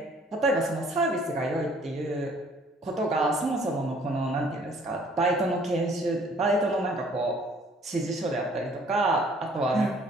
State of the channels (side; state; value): both; normal; correlation 0.58